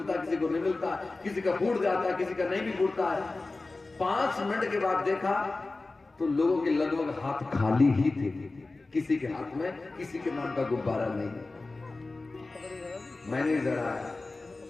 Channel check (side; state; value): right; quieter; 3.4 dB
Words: किसी को नहीं मिलता, किसी का फूट जाता, किसी का नहीं भी फूटता है। 5 मिनट के बाद देखा तो लोगों के लगभग हाथ खाली ही थे। किसी के हाथ में किसी के नाम का गुब्बारा नहीं। मैनेजर आया,